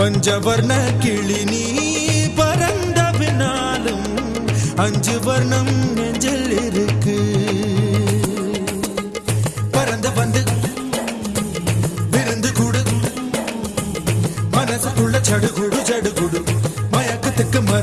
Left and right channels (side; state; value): both; identical; correlation 1.00